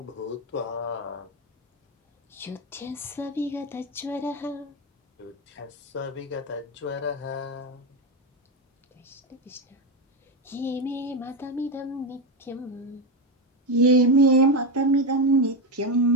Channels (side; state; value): both; normal; correlation 0.12